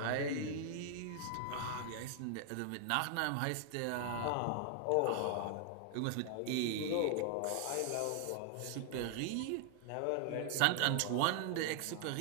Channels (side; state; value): both; different; correlation 0.00